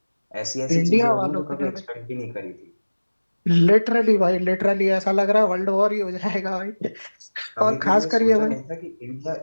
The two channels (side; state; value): both; inverted; correlation -1.00